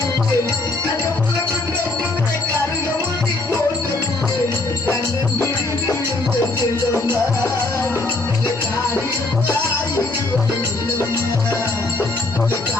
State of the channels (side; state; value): right; quieter; 3.1 dB